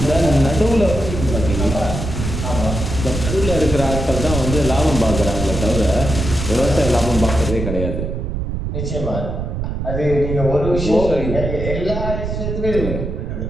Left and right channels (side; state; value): right; noise; rumble, 4 dB below the sound